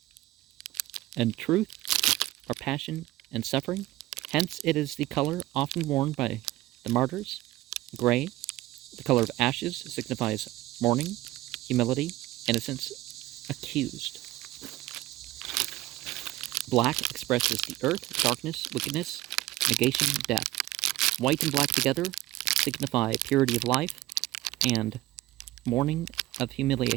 and truth, or passion and suffering. Hence, it is the color often worn by the martyrs. Gray, the color of ashes, signifies mourning, humility, innocence, accused. Black expresses the earth, darkness, wickedness, negation, death. White and black together signify purity of life and mourning of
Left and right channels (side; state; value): left; quieter; 17.1 dB